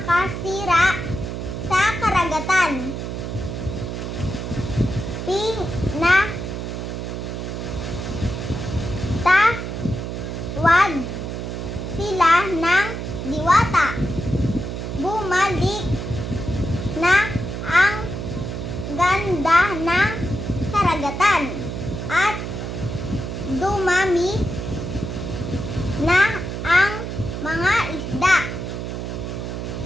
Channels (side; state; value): right; noise; hum, 5 dB below the sound